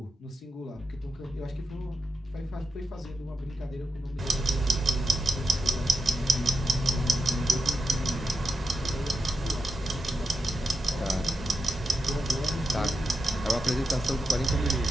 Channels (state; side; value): normal; both; correlation 0.87